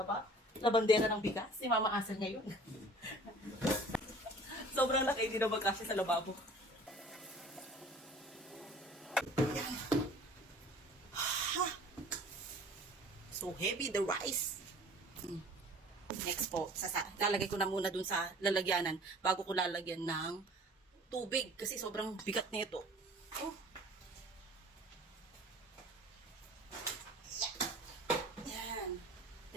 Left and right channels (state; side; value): normal; both; correlation 0.48